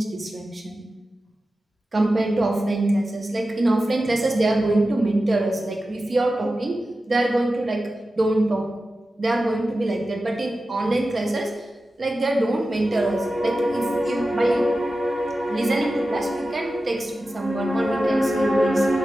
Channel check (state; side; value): normal; both; correlation 0.93